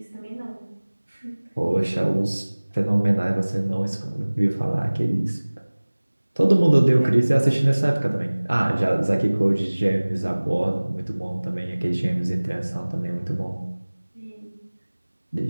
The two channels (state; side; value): inverted; both; correlation -1.00